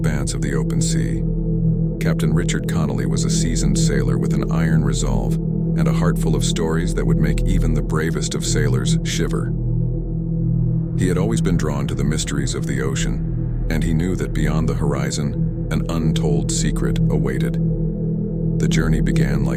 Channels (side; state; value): both; identical; correlation 1.00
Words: of the open sea. Captain Richard Connolly was a seasoned sailor with an iron resolve and a heart full of stories that would make even the bravest of sailors shiver. He had always been drawn to the mysteries of the ocean, and he knew that beyond the horizon, an untold secret awaited. The journey began